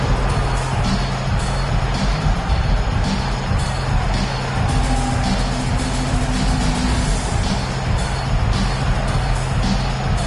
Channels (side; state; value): both; identical; correlation 1.00